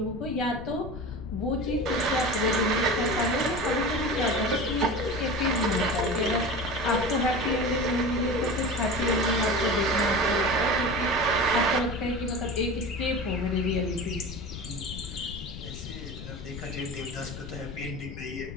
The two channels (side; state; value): left; noise; rumble, 10 dB below the sound